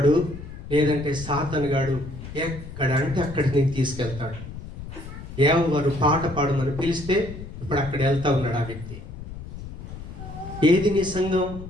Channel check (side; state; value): left; noise; rumble, 12 dB below the sound